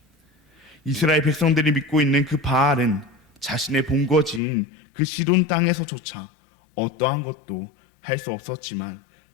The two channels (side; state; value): right; drops out; at 4.4 s